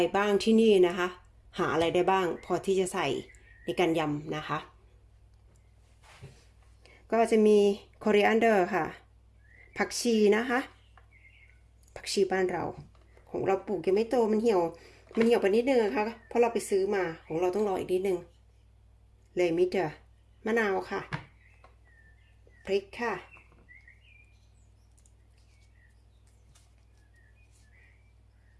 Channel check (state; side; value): identical; both; correlation 1.00